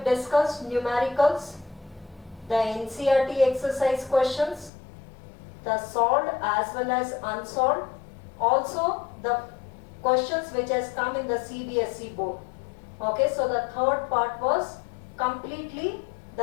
discussed numericals, the NCERT exercise questions, the solved as well as unsolved, also the questions which has come in the CBSE board. Okay, so the third part was completely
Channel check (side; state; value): right; drops out; at 4.7 s